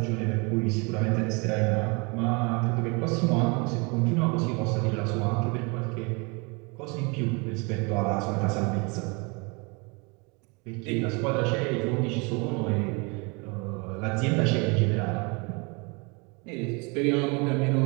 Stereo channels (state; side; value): quieter; left; 30.3 dB